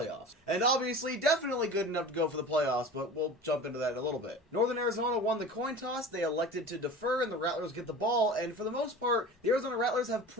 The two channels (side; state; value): both; normal; correlation 0.36